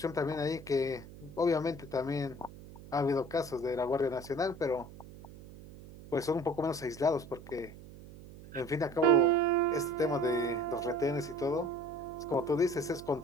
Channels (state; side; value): noise; right; hum, 17 dB below the sound